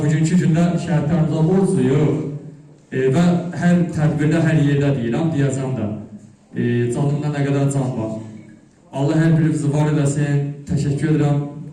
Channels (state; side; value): identical; both; correlation 1.00